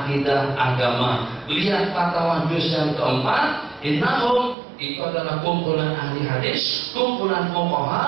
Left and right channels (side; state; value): left; drops out; at 4.5 s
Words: agama. Lihat fatwa juz yang keempat, innahum itu adalah kumpulan ahli hadis, kumpulan